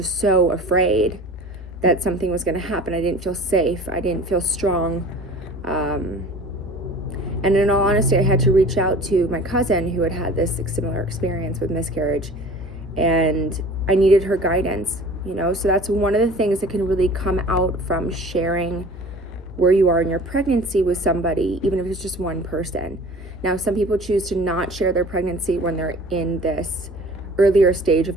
so afraid that something was going to happen. I didn't feel safe. I didn't feel strong. And in all honesty, I had to reach out to my cousin who had had this similar experience with miscarriage, and I needed her guidance, so that's one of the things that can really come out from sharing where you are in your pregnancy with somebody, even if it's just one person. Now, some people choose to not share their pregnancy when they're in this earlier stage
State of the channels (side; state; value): both; normal; correlation 0.43